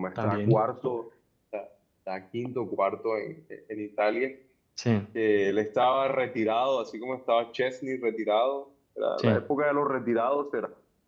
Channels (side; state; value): both; identical; correlation 1.00